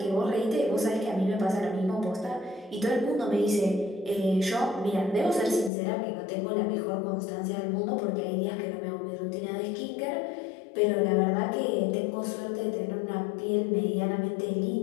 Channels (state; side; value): drops out; right; at 5.7 s